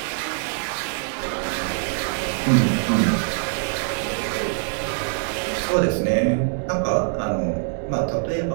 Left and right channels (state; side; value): silent; left; digital silence